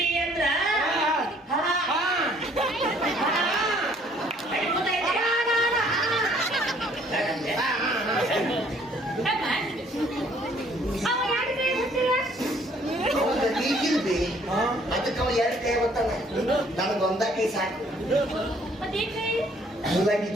ಅಂದ್ರ ಈಗಿಲ್ಬಿ ಅದಕ್ಕೆ ಅವ 2 ಕೈ ಗೊತ್ತಾನ ನನಗೊಂದ ಕೈ ಸಾಕು ಮುಲ್ಲಂಗಿ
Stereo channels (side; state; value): both; normal; correlation 0.61